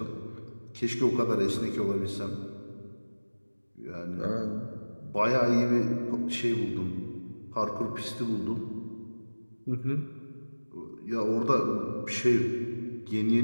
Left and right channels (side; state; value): both; inverted; correlation -1.00